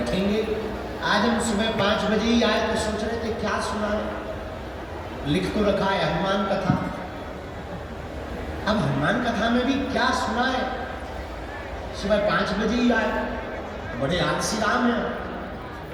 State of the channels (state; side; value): identical; both; correlation 1.00